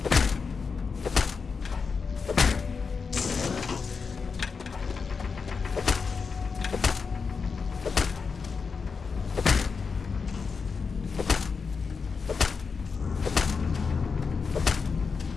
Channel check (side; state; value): right; quieter; 5.2 dB